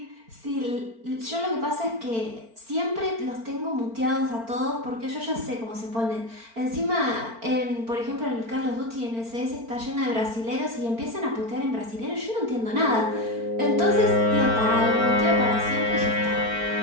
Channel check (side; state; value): left; late; 4.4 ms